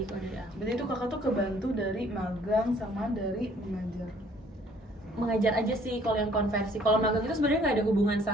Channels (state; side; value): normal; both; correlation 0.59